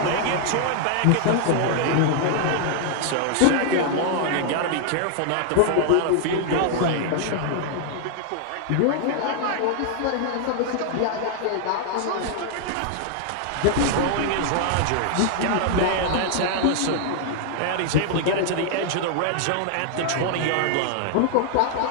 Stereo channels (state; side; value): different; both; correlation 0.00